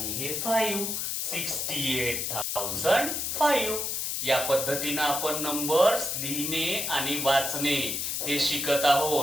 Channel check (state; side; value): noise; left; hiss, 1 dB below the sound